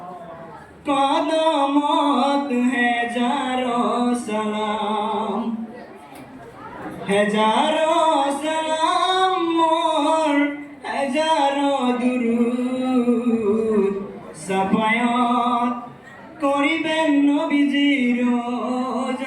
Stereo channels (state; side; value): identical; both; correlation 1.00